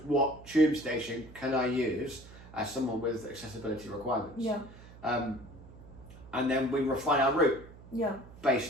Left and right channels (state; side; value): noise; right; hum, 19 dB below the sound